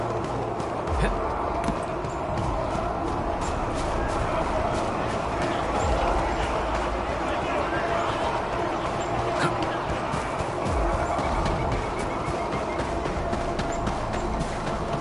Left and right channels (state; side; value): identical; both; correlation 1.00